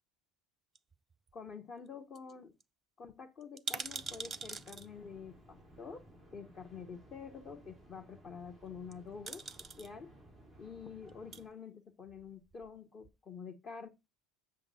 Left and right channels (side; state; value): both; normal; correlation 0.61